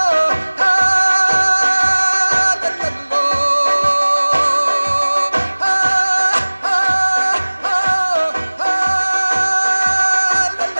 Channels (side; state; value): both; inverted; correlation -1.00